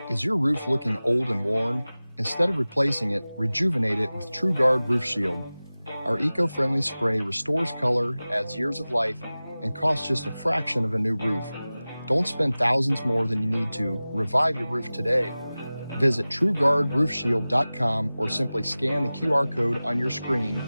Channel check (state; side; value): inverted; both; correlation -0.98